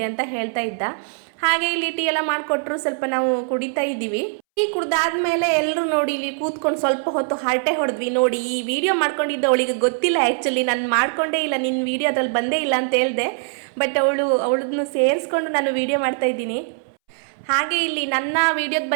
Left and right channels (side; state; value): left; silent; 64 dB below the other